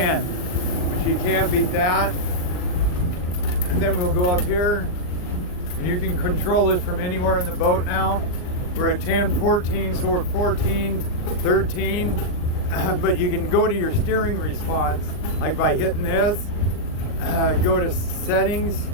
which you can't beat that. And then we'll go up here, and you can control this from anywhere in the boat now. We're at 10, 14, so we're 14, 13, but you can go to your steering response, like by hitting this, go to settings,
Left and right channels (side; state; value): right; late; 39 ms